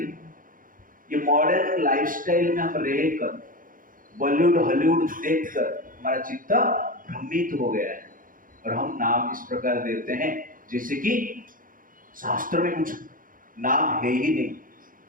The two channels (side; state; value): left; late; 0.40 ms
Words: ये मॉडर्न लाइफस्टाइल में हम रहकर, बॉलीवुड हॉलीवुड देखकर हमारा चित्त भ्रमित हो गया है, और हम नाम इस प्रकार देते हैं जैसे कि शास्त्र में कुछ नाम है ही नहीं।